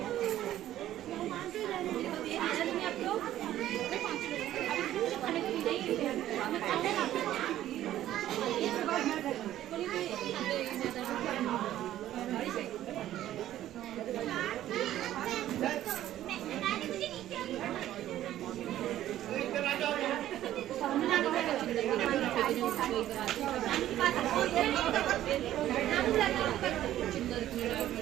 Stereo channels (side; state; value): left; quieter; 12.9 dB